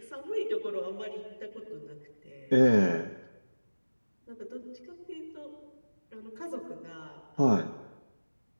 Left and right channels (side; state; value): both; inverted; correlation -1.00